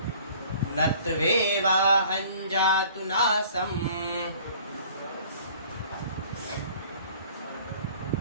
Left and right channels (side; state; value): both; inverted; correlation -0.51